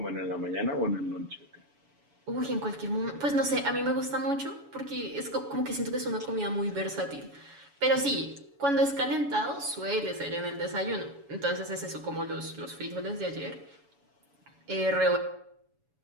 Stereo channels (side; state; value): left; late; 7.0 ms